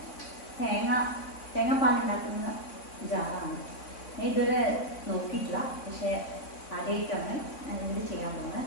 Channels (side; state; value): right; late; 3.6 ms